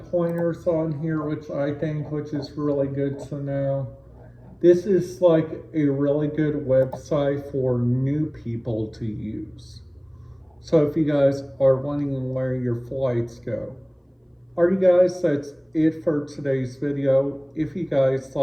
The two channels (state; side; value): identical; both; correlation 1.00